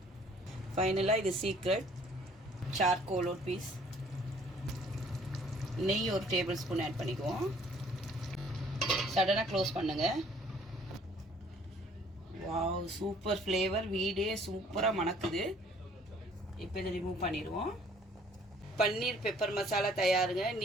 ஃபைனலாக இது சீக்ரெட் சார்கோல் ஒரு பீஸ், நெய் 1 டேபிள் ஸ்பூன் ஆட் பண்ணிக்குவோம். சடனாக க்ளோஸ் பண்ணுங்க. வாவ், சூப்பர் ஃப்ளேவர், வீடே சூப்பராக மணக்குது. இப்போ இதை ரிமூவ் பண்ணிடுவோம். பன்னீர் பெப்பர் மசாலா தயாருங்க.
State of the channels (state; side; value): normal; both; correlation 0.58